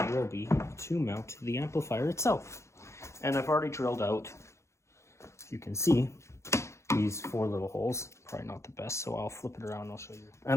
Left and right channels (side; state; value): right; late; 0.14 ms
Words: will be to mount the amplifier itself. And I've already drilled out, you can see, these 4 little holes. Probably not the best, so I'll flip it around and I'll show you.